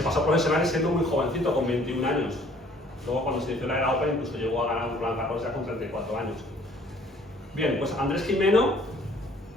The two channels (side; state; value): both; normal; correlation 0.57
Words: pasó a profesionales siendo muy jovencito, con 21 años. Luego cuando se inició la era Open incluso llegó a ganar un Roland Garros ya con 34 años. Bien, pues Andrés Gimeno,